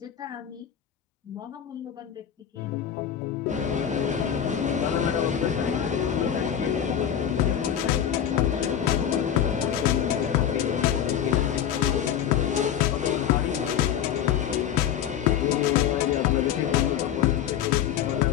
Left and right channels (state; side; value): quieter; right; 9.6 dB